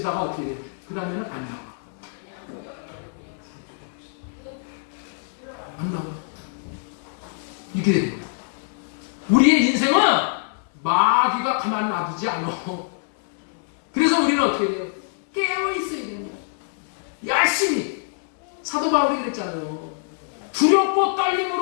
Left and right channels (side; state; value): right; silent; 62 dB below the other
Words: 어떻게 돼? 그 다음에는 안 나와. 안 나와. 이렇게 됩니다. 우리의 인생은 마귀가 가만 놔두지 않아. 그래서 우리는 어떻게 돼요? 깨어있어야 돼요. 열심히. 사도 바울이 그랬잖아요. 두렵고